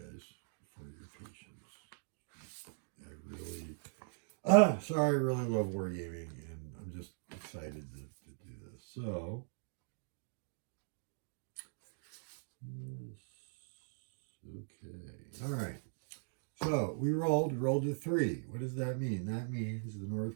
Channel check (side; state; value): left; silent; digital silence